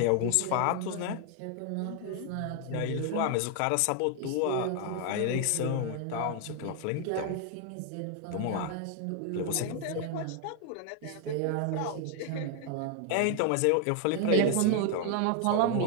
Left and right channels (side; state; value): both; different; correlation 0.00